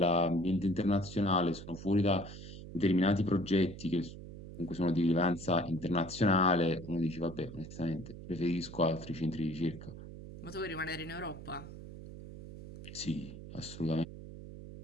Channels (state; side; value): noise; right; hum, 13 dB below the sound